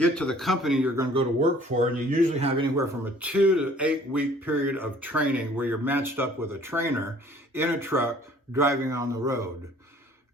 to the company you're going to go to work for, and you usually have anywhere from a 2 to 8 week period of training where you're matched up with a trainer in a truck driving on the road.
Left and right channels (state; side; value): normal; both; correlation 0.54